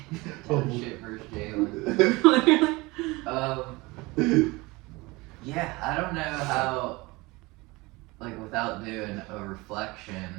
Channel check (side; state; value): left; quieter; 23.2 dB